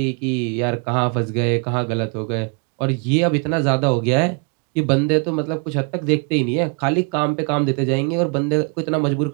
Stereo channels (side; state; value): left; quieter; 36.6 dB